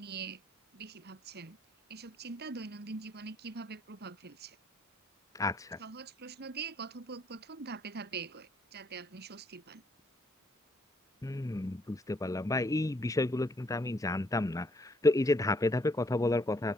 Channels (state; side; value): normal; both; correlation 0.68